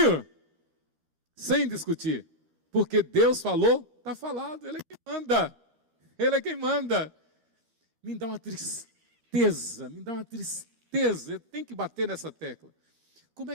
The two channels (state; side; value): late; left; 12 ms